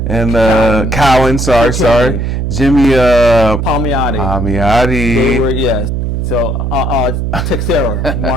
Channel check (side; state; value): right; noise; hum, 2 dB below the sound